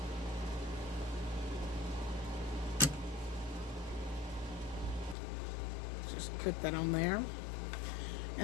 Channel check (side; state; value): right; drops out; at 5.2 s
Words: Put that on there.